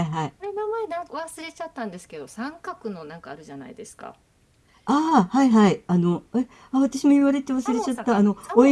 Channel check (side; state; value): both; identical; correlation 1.00